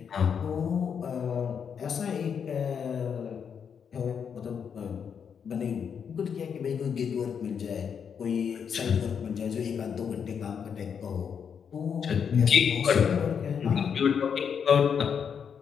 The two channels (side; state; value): right; quieter; 7.1 dB